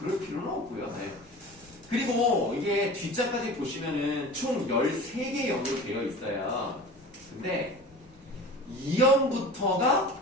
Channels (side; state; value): left; noise; rumble, 28 dB below the sound